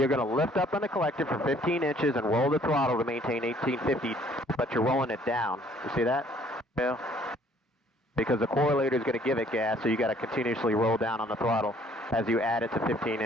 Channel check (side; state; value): both; normal; correlation 0.60